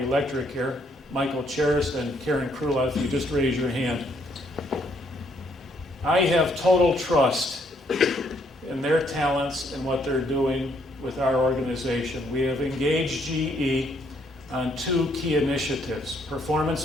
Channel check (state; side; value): normal; both; correlation 0.69